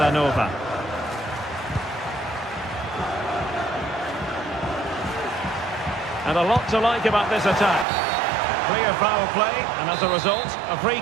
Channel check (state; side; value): drops out; left; at 7.9 s